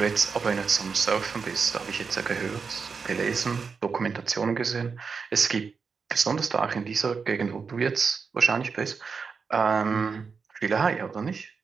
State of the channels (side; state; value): left; quieter; 5.3 dB